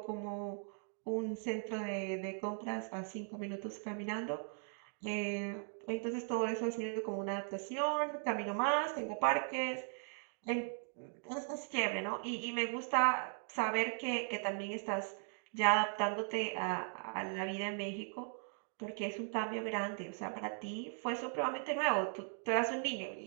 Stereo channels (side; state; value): left; silent; 52 dB below the other